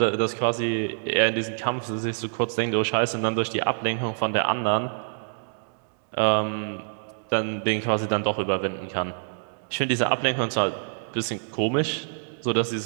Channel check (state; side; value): silent; left; digital silence